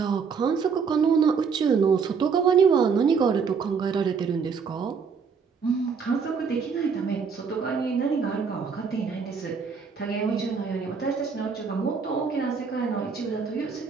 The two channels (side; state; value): left; quieter; 5.8 dB